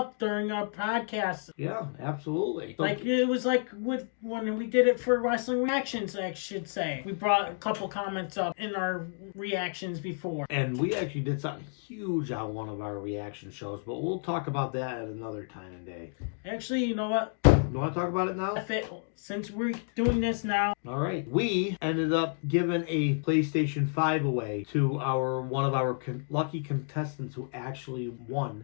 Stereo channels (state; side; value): silent; right; 58 dB below the other